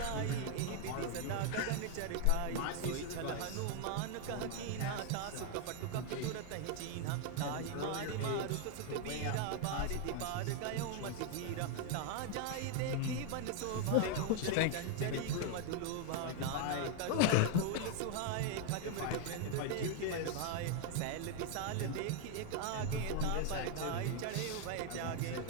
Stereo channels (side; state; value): both; different; correlation 0.00